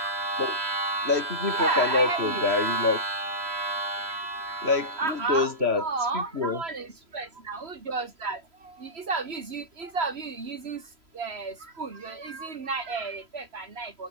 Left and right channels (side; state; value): left; late; 3.0 ms